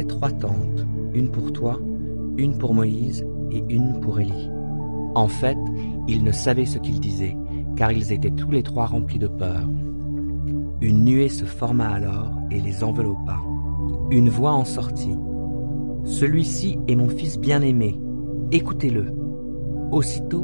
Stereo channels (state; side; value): inverted; both; correlation -1.00